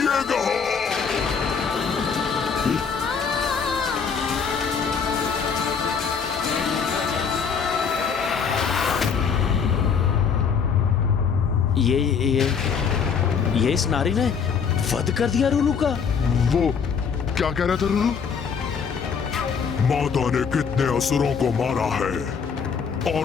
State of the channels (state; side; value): quieter; right; 6.3 dB